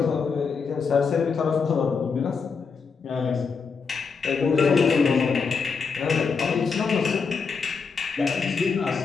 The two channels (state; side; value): quieter; right; 5.4 dB